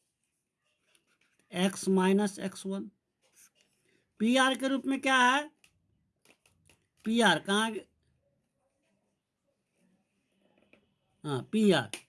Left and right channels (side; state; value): both; identical; correlation 1.00